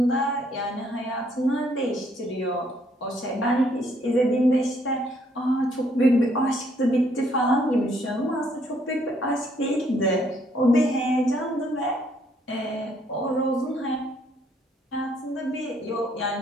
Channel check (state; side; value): normal; both; correlation 0.68